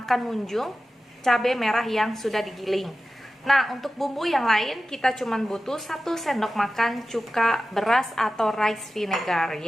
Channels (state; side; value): normal; both; correlation 0.95